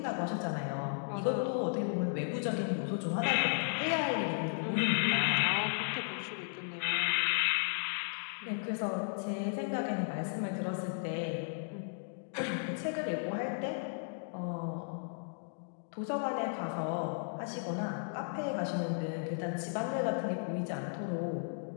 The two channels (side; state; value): right; silent; digital silence